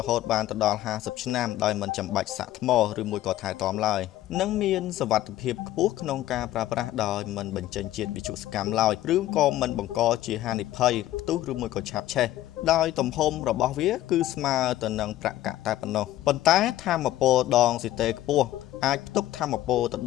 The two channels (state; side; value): quieter; right; 14.4 dB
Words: ហូតបានទៅដល់50ឆ្នាំដោយមិនចាំបាច់សាកថ្មឬមួយក៏ថែទាំឡើយនិងមានសុវត្ថិភាពខ្ពស់ក្នុងការប្រើប្រាស់ដោយមិនបញ្ចេញជាតិវិទ្យុសកម្មឡើយឬក៏មិនបង្កជាហានិភ័យផ្ទុះឬមួយក៏ឆាបឆេះដោយទំហំរបស់វាគឺស្មើទៅនឹងប្រាក់កាក់តែប៉ុណ្ណោះប៉ុន្តែថាមពលដងស៊ីតេខ្ពស់អាចផ្ទុកថាមពលទៅ